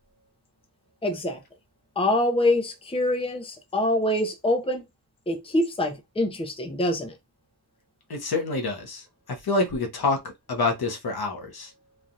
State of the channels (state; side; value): normal; both; correlation 0.36